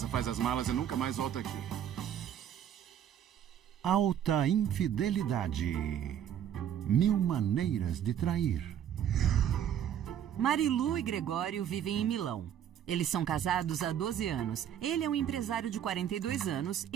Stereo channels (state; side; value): quieter; left; 9.8 dB